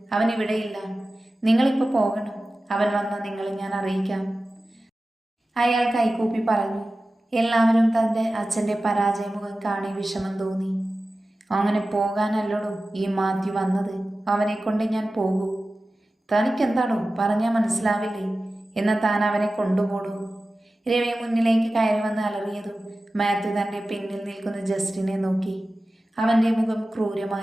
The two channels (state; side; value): normal; both; correlation 0.95